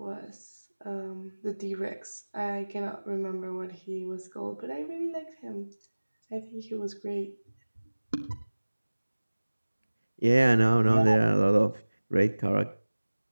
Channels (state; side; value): inverted; both; correlation -1.00